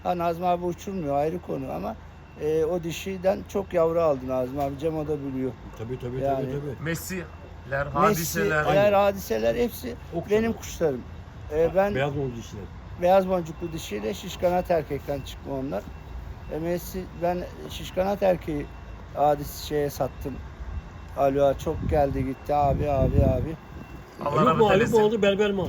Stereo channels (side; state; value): both; identical; correlation 1.00